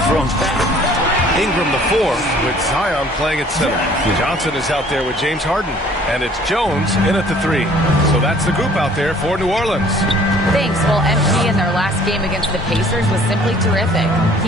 thrown back. Ingram the fourth with Zion playing at center. Johnson is out there with James Harden. And it's Jones in at the three. So that's the group out there for New Orleans. Thanks. Well, MP in their last game against the Pacers was simply terrific.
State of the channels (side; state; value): both; normal; correlation 0.55